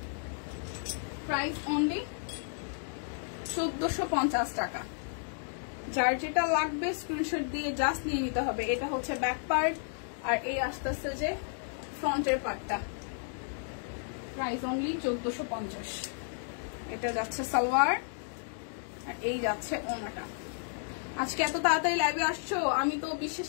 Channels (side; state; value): right; silent; digital silence